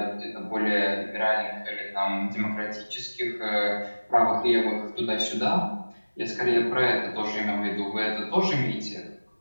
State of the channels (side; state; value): both; inverted; correlation -1.00